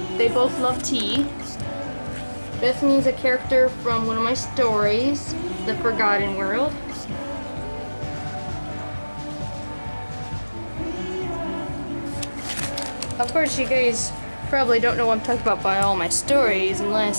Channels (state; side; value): inverted; both; correlation -1.00